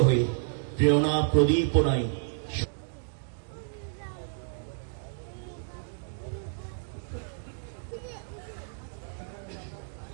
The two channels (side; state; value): left; silent; digital silence